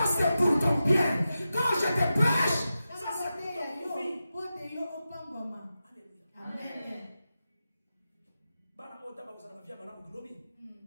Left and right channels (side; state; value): both; inverted; correlation -0.91